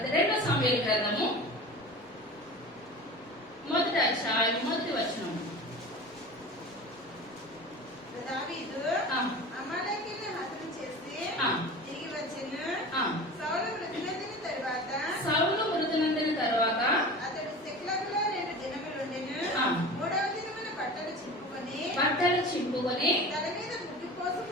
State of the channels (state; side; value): normal; both; correlation 0.35